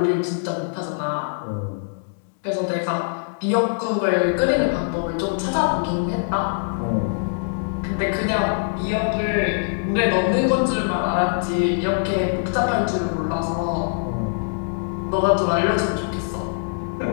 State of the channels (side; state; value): right; silent; digital silence